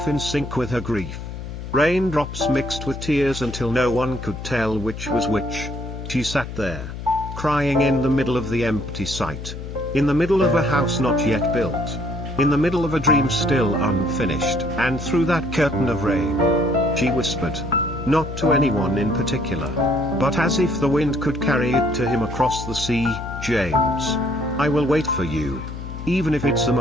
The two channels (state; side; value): noise; left; hum, 9 dB below the sound